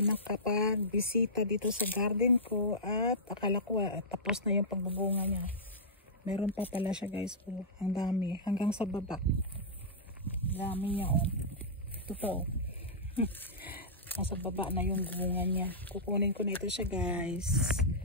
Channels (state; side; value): normal; both; correlation -0.14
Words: dito sa garden ko at akala ko tapos na yung pagbubunga niya. Meron pa pala siya guys. Oh, ang dami hanggang sa baba. Dami niya oh. Ito pa oh. Nasa baba na yung bunga niya. Kukunin ko na ito siya guys.